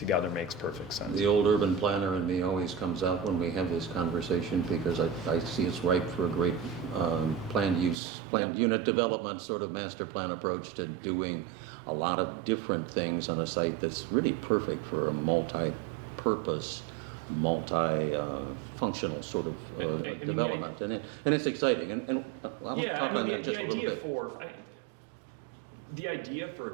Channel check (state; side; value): drops out; left; at 8.0 s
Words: makes perfect sense. The old urban planner in me always comes out when we have this conversation because I see it's ripe for a great planned unit development sort of master plan approach to doing a lot of different things on a site that's really perfect for a multi-purpose multi-functional sort of I mean, development, and it's exciting. And I'll Yeah, talk I mean, on that the just a little idea bit. the idea for a